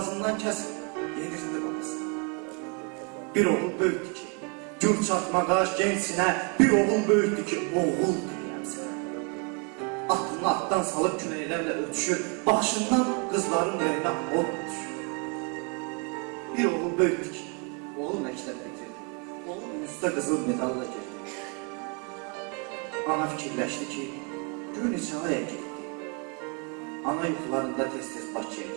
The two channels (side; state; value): left; quieter; 35.5 dB